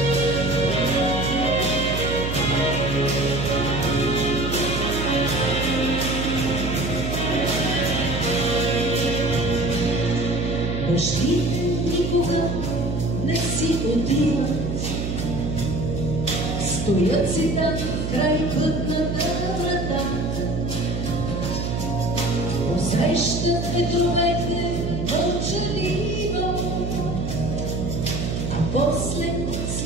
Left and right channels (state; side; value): noise; right; hum, 2 dB below the sound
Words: никога не си отиват, стоят си там край пътната врата, посрещат ветровете мълчаливо, а после